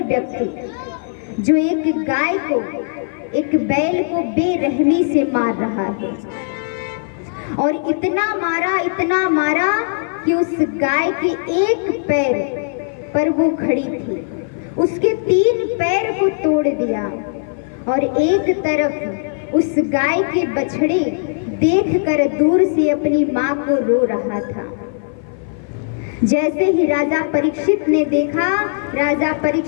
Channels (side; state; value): right; silent; 55 dB below the other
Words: व्यक्ति जो एक गाय को, एक बैल को बेरहमी से मार रहा है, और इतना मारा कि उस गाय के एक पैर पर वो खड़ी थी, उसके 3 पैर को तोड़ दिया, और एक तरफ उस गाय के बछड़े देखकर दूर से अपनी माँ को रो रहा था। जैसे ही राजा परीक्षित ने देखा, राजा